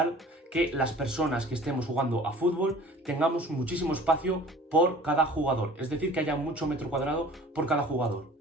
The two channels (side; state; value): both; normal; correlation 0.47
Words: que las personas que estemos jugando a fútbol tengamos muchísimo espacio por cada jugador. Es decir, que haya mucho metro cuadrado por cada jugador.